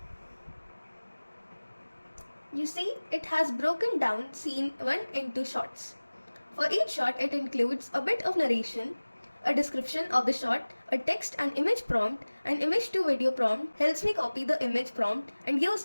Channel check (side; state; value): both; inverted; correlation -1.00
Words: You see, it has broken down scene 1 into shots. For each shot, it includes a bit of narration, a description of the shot, a text and image prompt. An image to video prompt helps me copy the image prompt and